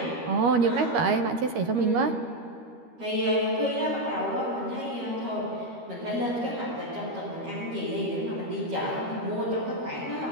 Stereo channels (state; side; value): late; left; 13 ms